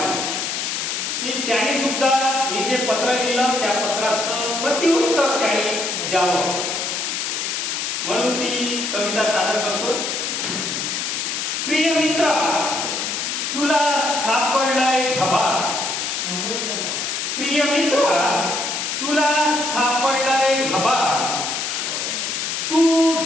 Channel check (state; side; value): noise; left; hiss, 2 dB below the sound